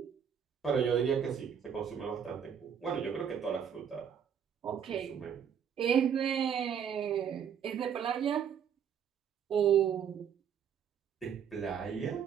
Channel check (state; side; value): quieter; left; 8.0 dB